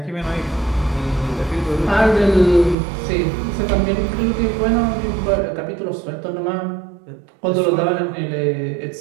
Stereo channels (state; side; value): drops out; left; at 2.8 s